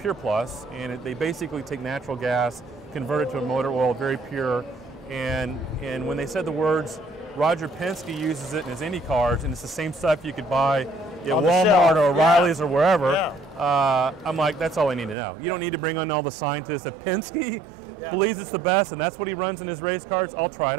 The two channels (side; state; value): left; drops out; at 15.2 s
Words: Plus, and they basically take natural gas, convert it to a motor oil, very pure, and when they said the words, Roger Penske uses it in his Indy cars, and it's the same stuff you could buy at Walmart or O'Reilly's or wherever. I'm like, that's all I need to know. You don't need to bring on all the scientists. If Penske believes it's the best and that's what he runs in his race cars, I'll try it